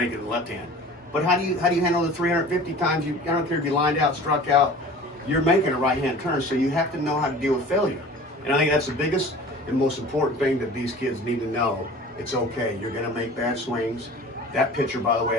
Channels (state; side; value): normal; both; correlation 0.42